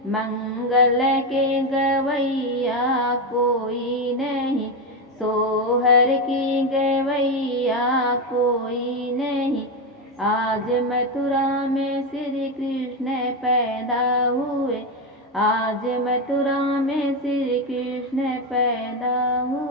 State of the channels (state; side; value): normal; both; correlation 0.11